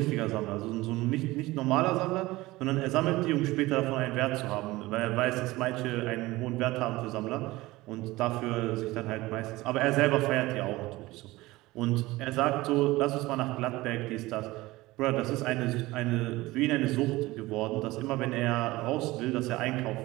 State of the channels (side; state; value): left; quieter; 19.4 dB